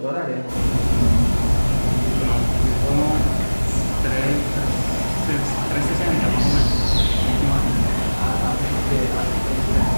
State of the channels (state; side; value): inverted; both; correlation -1.00